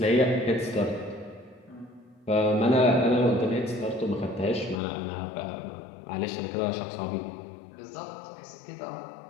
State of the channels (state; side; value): drops out; right; at 4.8 s